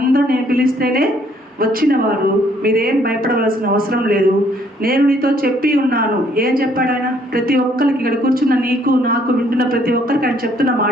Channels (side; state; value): both; normal; correlation 0.65